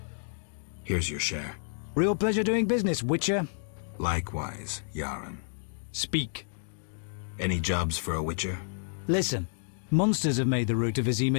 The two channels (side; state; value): right; silent; digital silence